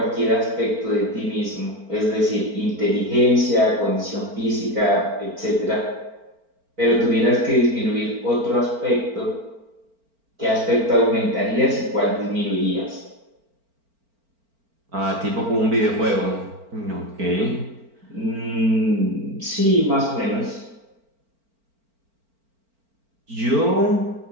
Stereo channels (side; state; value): left; late; 4.4 ms